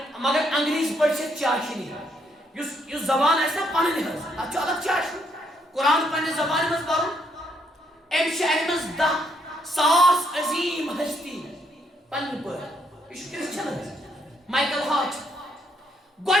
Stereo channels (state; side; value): normal; both; correlation 0.73